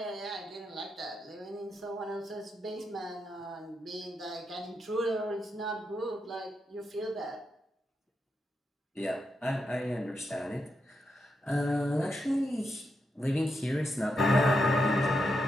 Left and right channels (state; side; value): normal; both; correlation 0.84